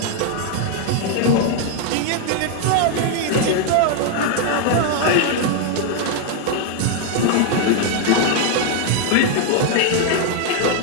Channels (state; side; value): different; both; correlation 0.00